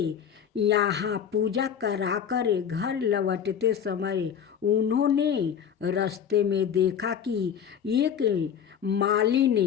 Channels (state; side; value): quieter; right; 8.2 dB